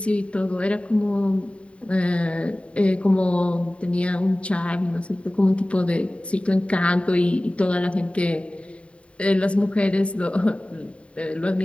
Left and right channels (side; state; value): right; late; 0.062 ms